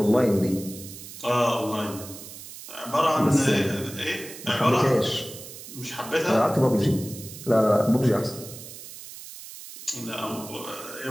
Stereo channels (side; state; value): right; noise; hiss, 14 dB below the sound